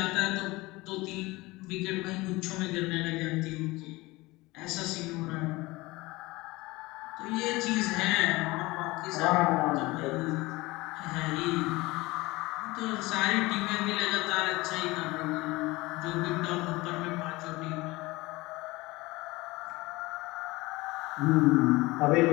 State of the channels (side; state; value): right; quieter; 21.4 dB